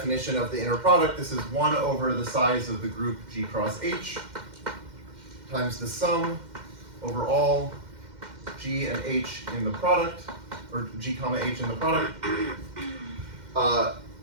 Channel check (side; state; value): left; late; 2.1 ms